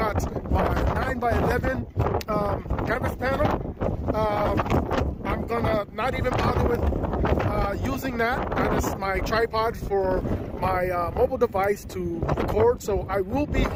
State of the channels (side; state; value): both; identical; correlation 1.00